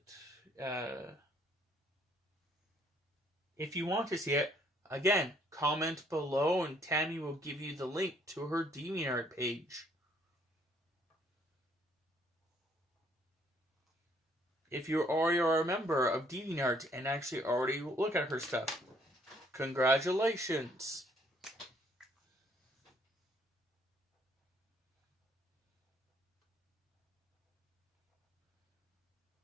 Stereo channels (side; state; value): both; normal; correlation 0.65